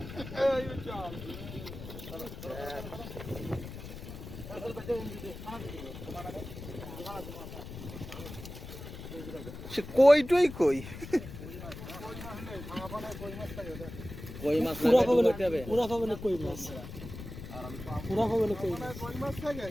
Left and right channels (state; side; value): noise; left; rumble, 11 dB below the sound